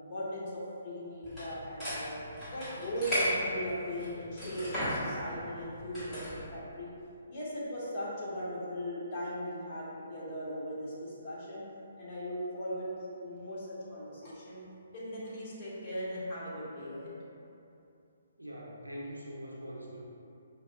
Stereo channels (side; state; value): both; inverted; correlation -0.67